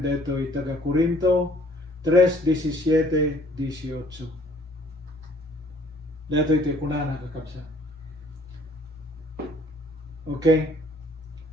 deto taga Corinto 3:17-18. Deto iti kunana kakabsa. Okay?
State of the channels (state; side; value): normal; both; correlation 0.59